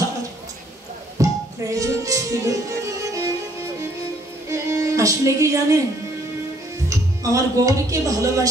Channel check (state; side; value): normal; both; correlation 0.64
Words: প্রয়োজন ছিল। আসলে কি জানেন, আমার গৌরীকে